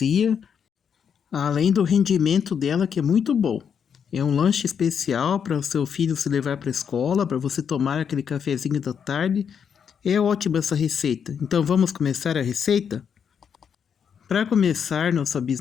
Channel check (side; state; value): right; quieter; 7.4 dB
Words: além do rendimento dela que é muito bom. É um lanche especial para o seu filho se levar para a escola, para você tomar aquele cafezinho da tarde. É ótima essa receita. Então vamos começar a receita? Para começar nossa